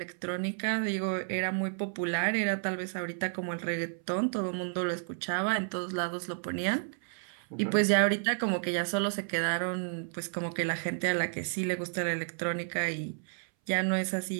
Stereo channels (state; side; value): silent; left; 57 dB below the other